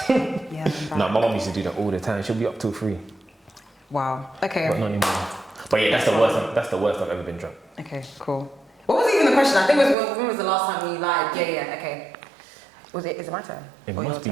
yeah, I'm back. No, my mum used to do that all the time. She'll be up till 3. Wow. Okay. But not anymore. But yeah, that's the worst. That's the worst I've ever been drunk. Okay, cool. What was even the question? I think it was when was the last time you lied? Yeah, okay. Is it my turn? It or must be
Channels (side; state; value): left; drops out; at 10.0 s